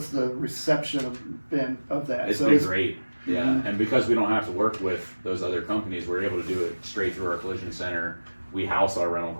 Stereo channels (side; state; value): both; inverted; correlation -1.00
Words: the reception of that? It's been great, yeah. And because we don't have to work with those other companies, we're able to do it straight through our collision center. We house our rental